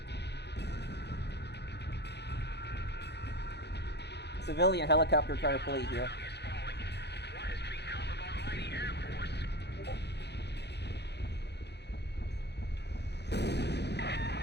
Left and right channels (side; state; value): right; late; 0.49 ms